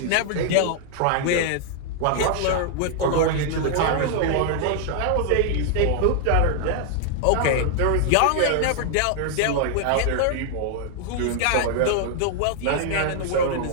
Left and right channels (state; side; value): different; both; correlation 0.00